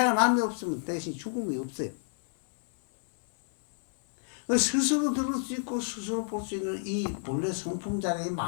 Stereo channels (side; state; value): right; silent; digital silence